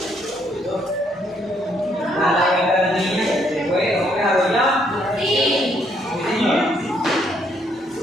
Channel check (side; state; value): both; normal; correlation 0.70